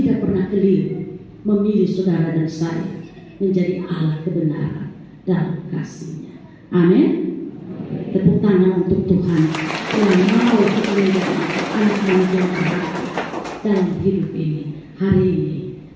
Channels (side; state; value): both; identical; correlation 1.00